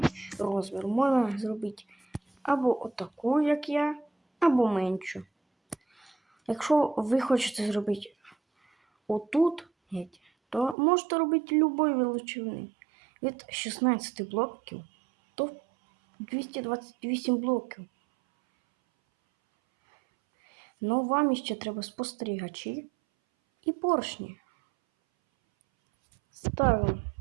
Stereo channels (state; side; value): drops out; left; at 10.8 s